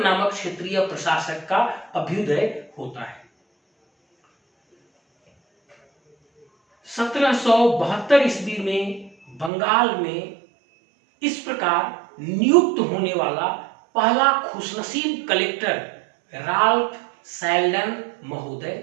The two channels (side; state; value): left; drops out; at 9.5 s